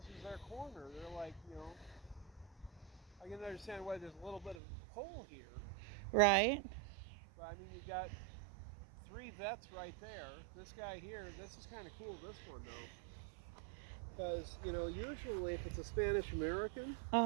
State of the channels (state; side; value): drops out; left; at 4.5 s